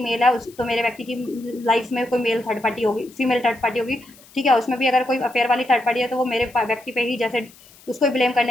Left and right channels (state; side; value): noise; left; hiss, 25 dB below the sound